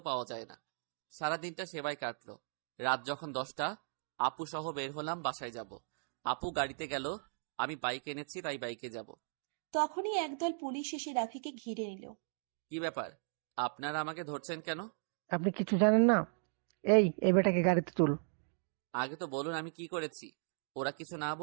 পাওয়া যায় না। সারাদিনটা সেবায় কাটলো। রাত যখন 10টা, আপু সহ বের হলাম বাসায় যাব। আপু গাড়িতে গেল, আমি বাইক এনেছি তাই বাইকে যাব। তখনই একদল পুলিশ এসে রাফিকে ঘিরে নিল। কি ব্যাপার, আপনারা আমাকে ধরছেন কেন? আপনি কিছু জানেন না? এই বেটাকে গাড়িতে তুল। আগে তো বলুন আমি কি করেছি। ওরা কিছু না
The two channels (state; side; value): silent; left; digital silence